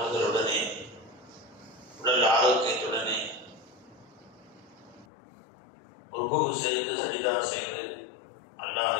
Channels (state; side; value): drops out; right; at 5.1 s